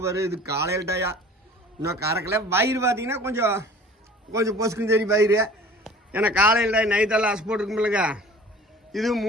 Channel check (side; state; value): both; normal; correlation 0.45